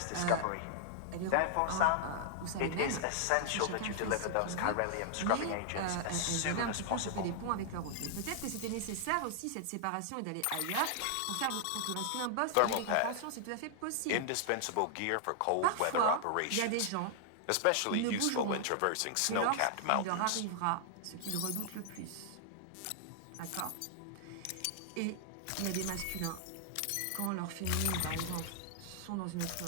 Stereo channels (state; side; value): different; both; correlation -0.01